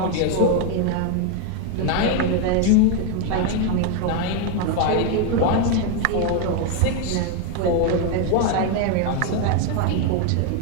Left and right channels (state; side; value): different; both; correlation 0.01